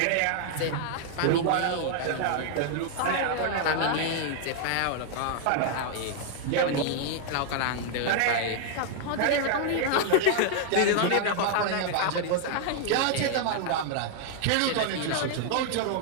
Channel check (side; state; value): both; different; correlation 0.00